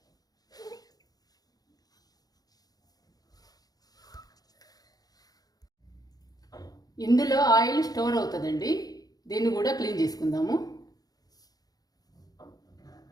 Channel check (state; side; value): late; right; 0.18 ms